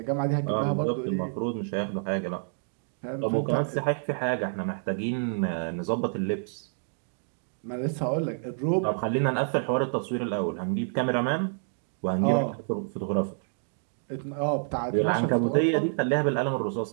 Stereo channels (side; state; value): left; silent; digital silence